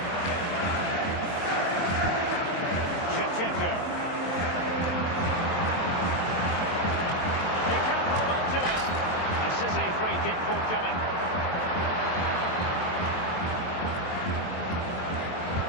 Shevchenko. He can't hold on to it. A City free kick forthcoming.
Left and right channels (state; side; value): late; right; 23 ms